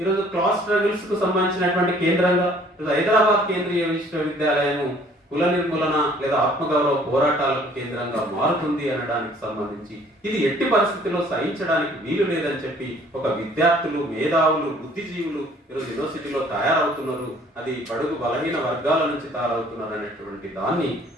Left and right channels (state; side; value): normal; both; correlation 0.57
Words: క్లాస్ స్ట్రగుల్స్ కు సంబంధించినటువంటి కేంద్రంగా హైదరాబాద్ కేంద్రీయ విశ్వవిద్యాలయం కుల నిర్మూలన లేదా ఆత్మగౌరవ పోరాటాలకు కేంద్రంగా మారుతుంది అనడానికి సంబంధించి ఇది ఎట్టి పరిస్థితుల్లో సహించడానికి వీలు లేదని చెప్పి ఒక విద్యార్థులు, మేధావులు, బుద్ధిజీవులు ఈరోజు యూనివర్సిటీలో తయారవుతున్నారు. అది బడుగు బలహీన వర్గాల నుంచి తయారవుతున్నారు అనేటువంటి దాన్ని